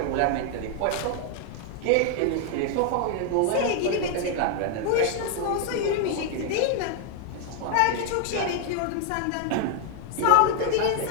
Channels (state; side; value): different; both; correlation 0.00